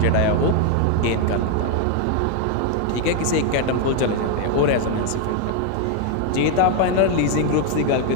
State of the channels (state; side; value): different; both; correlation 0.01